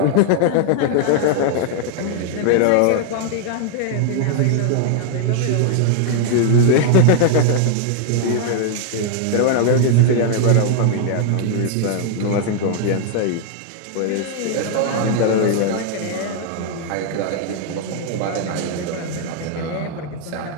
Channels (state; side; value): different; both; correlation 0.00